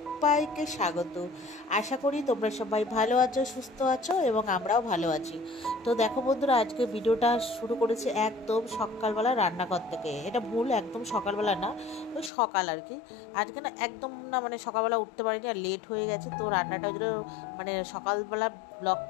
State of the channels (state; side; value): drops out; right; at 12.3 s